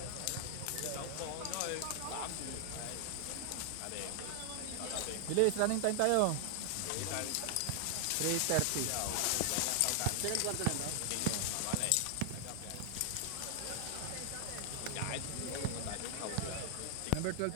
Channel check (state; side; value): different; both; correlation 0.00